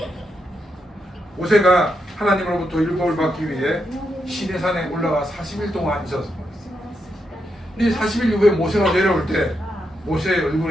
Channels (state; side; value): normal; both; correlation 0.83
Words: 모세가 하나님으로부터 율법을 받기 위해 시내산에 올라가 40일 동안 있었습니다. 이 40일 이후에 모세가 내려올 때 모세의